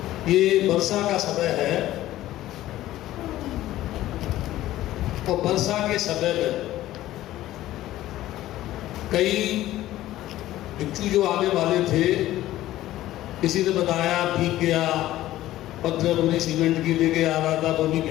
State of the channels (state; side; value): quieter; right; 14.8 dB